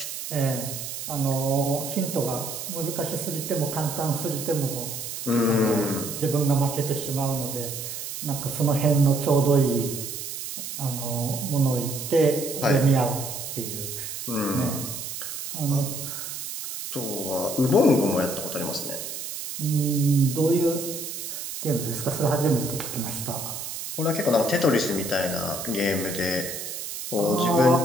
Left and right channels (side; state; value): right; noise; hiss, 7 dB below the sound